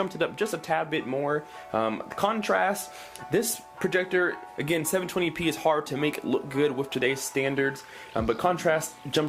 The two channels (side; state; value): both; identical; correlation 1.00